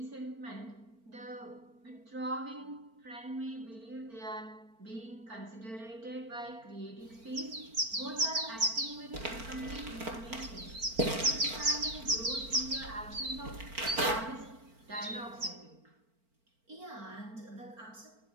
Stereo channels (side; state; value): left; late; 4.4 ms